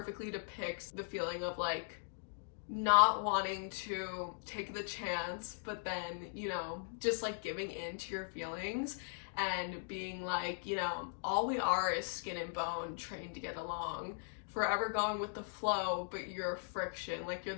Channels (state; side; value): silent; right; digital silence